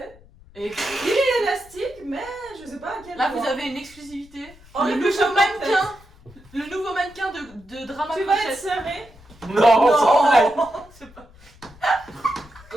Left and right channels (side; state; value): left; noise; rumble, 24 dB below the sound